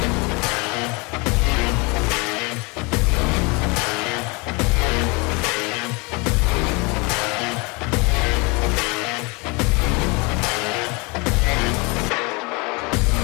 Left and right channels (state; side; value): quieter; right; 28.6 dB